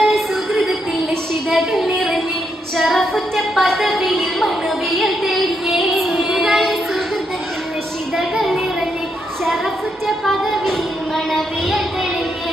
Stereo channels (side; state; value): both; normal; correlation 0.79